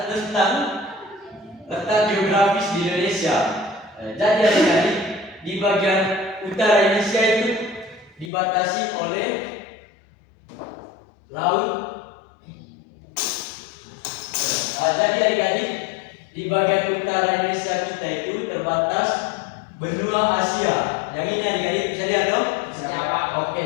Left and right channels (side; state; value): right; drops out; at 8.3 s